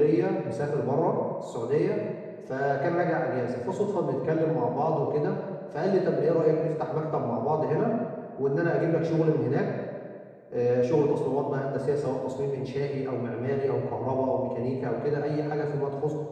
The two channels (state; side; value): identical; both; correlation 1.00